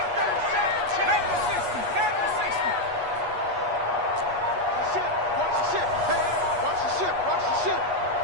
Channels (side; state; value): left; late; 8.3 ms